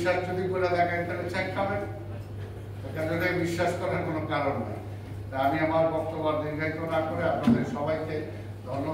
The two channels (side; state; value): both; identical; correlation 1.00